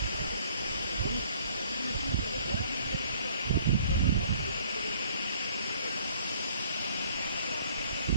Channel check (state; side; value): inverted; both; correlation -0.59